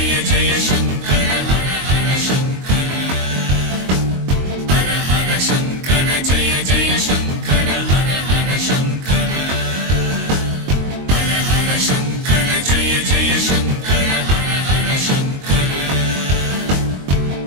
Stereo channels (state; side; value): late; left; 22 ms